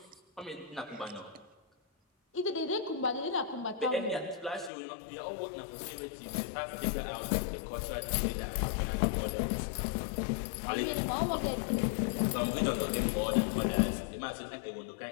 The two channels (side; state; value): right; drops out; at 4.7 s